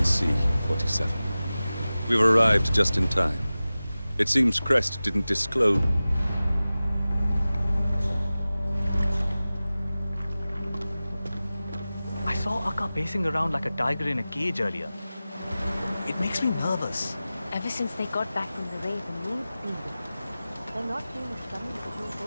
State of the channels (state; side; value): inverted; both; correlation -0.96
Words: Sea, 47. We've arrived just in time. It seems Crest didn't disclose... I saw Akka pacing around like a tiger in a cage earlier. It makes me nervous. Ever since they got back from the raid, the mood's been different. They're not seeing us coming because no